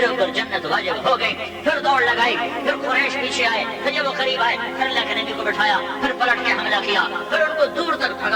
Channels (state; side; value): identical; both; correlation 1.00